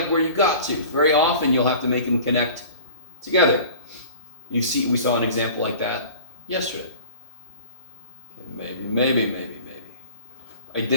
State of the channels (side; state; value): both; inverted; correlation -0.42